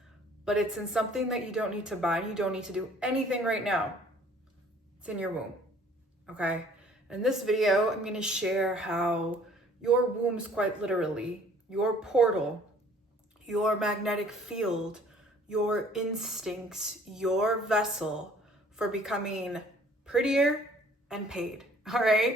but it's in something that you don't need to buy. You don't need to do anything right now. It's in your womb, okay? In this video, I'm gonna share how your womb is quite literally your portal, your magnetic field, your instincts, your vessel for becoming prettier and paid, all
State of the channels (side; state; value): both; normal; correlation 0.55